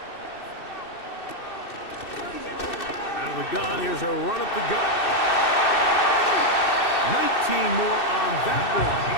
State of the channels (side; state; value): right; late; 2.6 ms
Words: Out of the gun, here's a run up the gut. 19 more on that one,